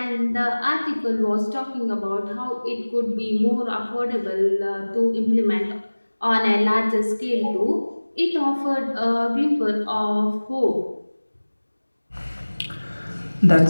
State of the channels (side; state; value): both; inverted; correlation -1.00